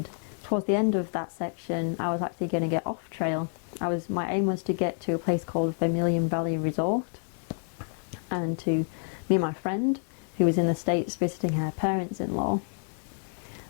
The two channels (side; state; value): right; silent; 59 dB below the other